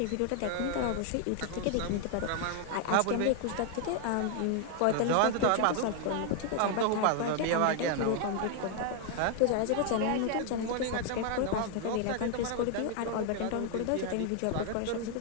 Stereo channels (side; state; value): both; different; correlation 0.00